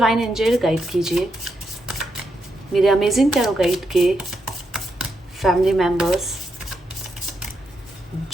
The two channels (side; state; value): both; normal; correlation 0.83